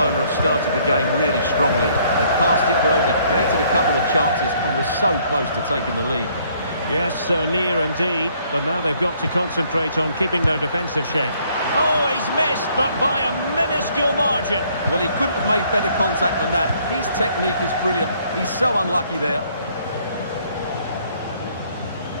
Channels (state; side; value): inverted; both; correlation -0.64